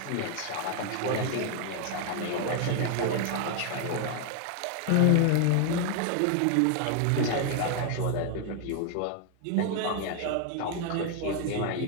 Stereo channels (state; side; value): different; both; correlation 0.00